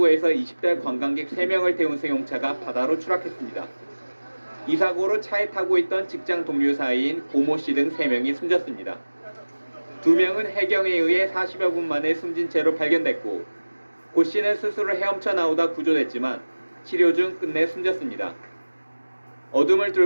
20대 관광객 3명을 태운 승용차가 바다로 추락했습니다. 이 사고로 차에 타고 있던 직장 동료 사이인 고모 씨 등 3명이 숨졌습니다. 2명은 해경에 의해 40여 분 만에 숨진 채로 발견됐고 고 씨는 스스로 헤엄쳐 나오다 구조됐지만 치료 중 끝내 숨졌습니다. 어둠을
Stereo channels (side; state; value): both; inverted; correlation -1.00